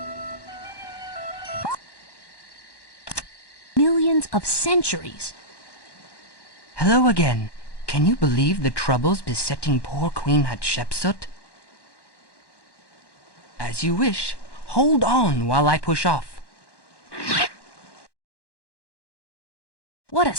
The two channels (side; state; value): right; late; 1.1 ms